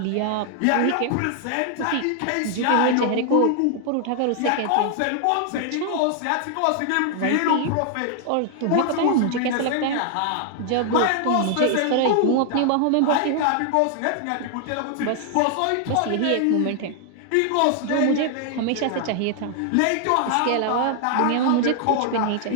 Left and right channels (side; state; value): both; different; correlation 0.00